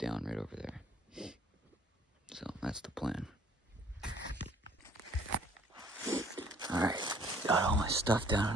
right over there. So that's the plan. Alright, got all my stuff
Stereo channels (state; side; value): normal; both; correlation 0.57